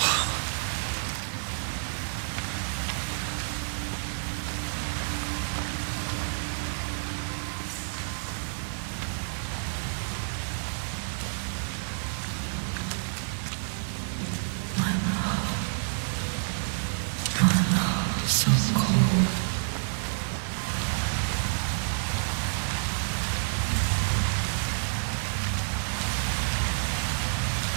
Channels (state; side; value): silent; left; 59 dB below the other